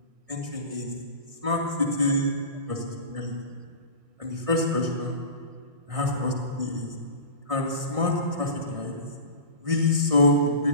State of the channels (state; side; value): late; left; 1.6 ms